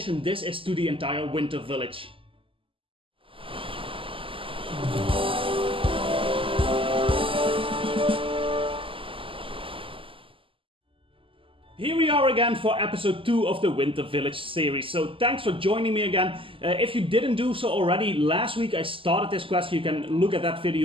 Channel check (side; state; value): left; late; 0.25 ms